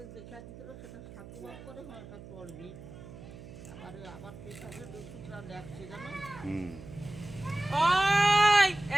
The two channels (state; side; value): noise; right; hum, 15 dB below the sound